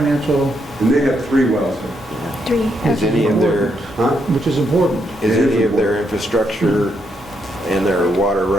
And they have 3 wells here. 3. Is any of their, Huh? which is important. is any of their infrastructure and their water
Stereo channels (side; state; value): both; normal; correlation 0.78